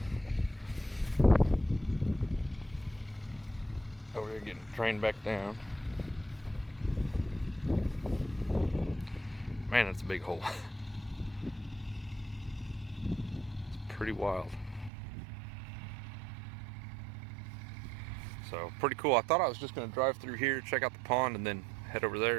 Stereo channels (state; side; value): drops out; left; at 14.9 s